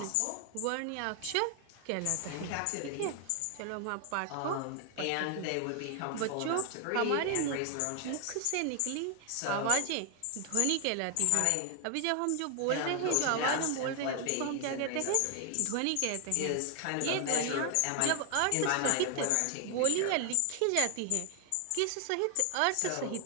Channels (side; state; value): both; different; correlation 0.00